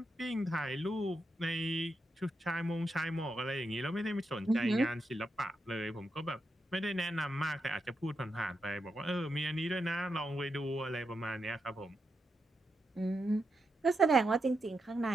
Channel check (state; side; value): normal; both; correlation 0.85